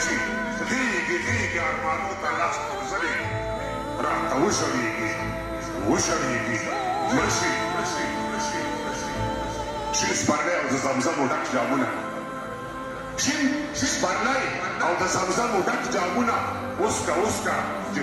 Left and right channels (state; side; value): identical; both; correlation 1.00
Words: شي غېږې غېږې ارمانو ته لاس غورځوي راته وشړېږي وشړېږي مړ شي شین سپرلی او د زمزمو ډک جامونه شین سپرلی او د زمزمو ډک جامونه اوسکه اوسکه چې